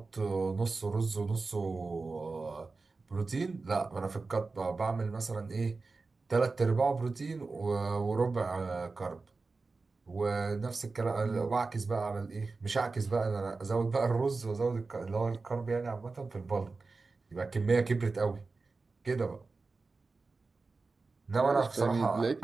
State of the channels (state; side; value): quieter; left; 3.9 dB